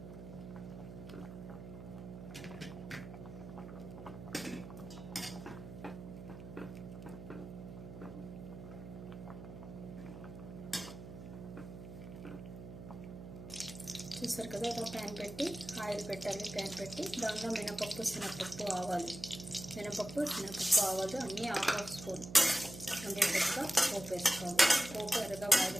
చూసారు కదా, ఒక ప్యాన్ పెట్టి ఆయిల్ పెట్టాలి. ప్యాన్ పెట్టి దానిలో మినపప్పు, శనగపప్పు, ఆవాలు, మినపప్పు, శనగపప్పు, ఆవాలు అన్నీ హాఫ్ స్పూన్ ఉండేటట్టుగా పోపు వేసుకోవాలి. పోపు ఎర్రగా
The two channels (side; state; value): right; noise; hum, 12 dB below the sound